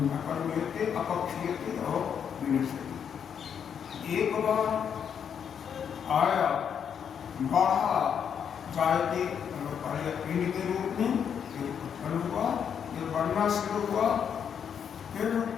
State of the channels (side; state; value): right; quieter; 7.8 dB